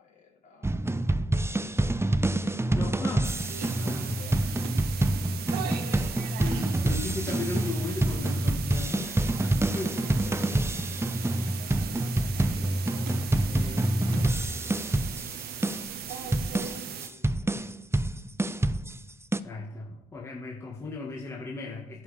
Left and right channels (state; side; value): normal; both; correlation 0.87